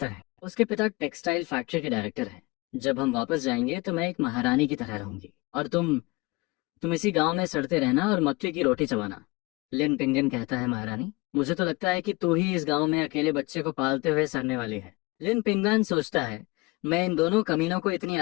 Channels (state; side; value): quieter; right; 24.0 dB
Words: है। उसके पिता टेक्सटाइल फैक्ट्री के डायरेक्टर हैं। जब हम वापस जाएंगे तो मैं एक महारानी की तरह रहूंगी और तुम इसी गांव में सड़ते रहना और मक्के की रोटी चबाना। लिन पिंगन कहता है, महारानी, मुझे तो लगता है कि तू ही इस गांव में अकेले बच्चे को पालते हुए सड़ने वाली है। लिन पिंगन सोचता है, मैं इन दोनों कमीनों को इतनी